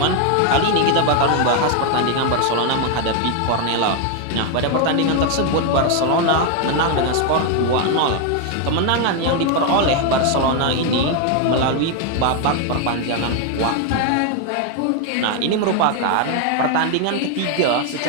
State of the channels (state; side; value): different; both; correlation 0.01